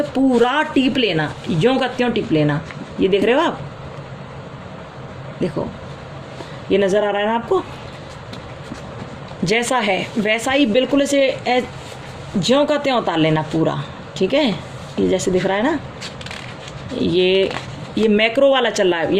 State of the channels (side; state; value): both; identical; correlation 1.00